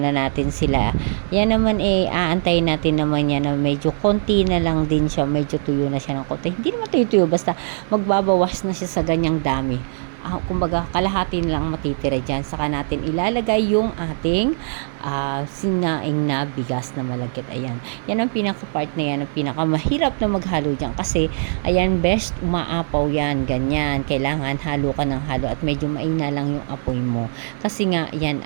natin sila. Yan naman aantayin natin naman yan na medyo konti na lang din siya, medyo tuyo na siya ng konti. Hindi naman tuyo-tuyo, basta magbabawas na siya sa ganyang dami. Kumbaga, kalahati lang matitira dyan. Saka natin ilalagay yung ating sinaing na bigas na malagkit. Ayan. Yan ang pinaka-part na yan, ang pinakamahirap na maghalo dyan. Kasi, ayan, best, umaapaw yan. Ganyan. Kailangan halo ka ng halo at medyo maina lang yung apoy mo. Kasi nga, yan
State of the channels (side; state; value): left; silent; digital silence